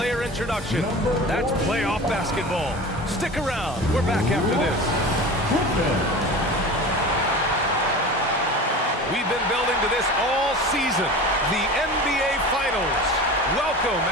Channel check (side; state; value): both; normal; correlation 0.34